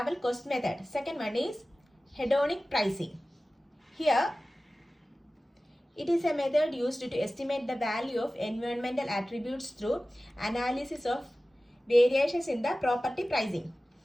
cost method. Second one is hedonic pricing. Here, it is a method used to estimate the value of environmental attributes through analysis of variations in the property pricing.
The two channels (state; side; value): normal; both; correlation 0.96